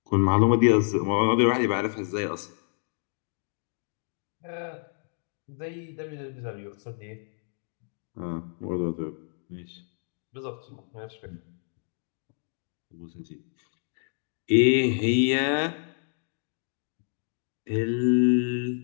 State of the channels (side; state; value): right; silent; 59 dB below the other